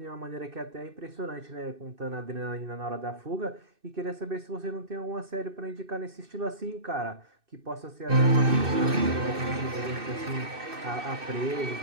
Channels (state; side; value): late; left; 2.6 ms